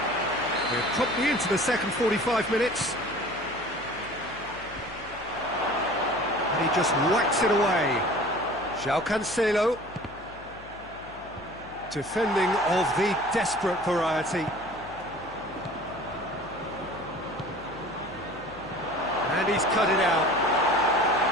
We're promptly into the second 45 minutes. And he just whacks it away. João Cancelo. Defending of the desperate variety. And he's cut it out.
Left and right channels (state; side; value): noise; left; hum, 20 dB below the sound